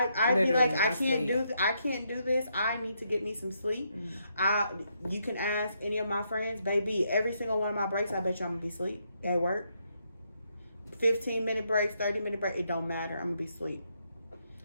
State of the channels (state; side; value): inverted; both; correlation -0.77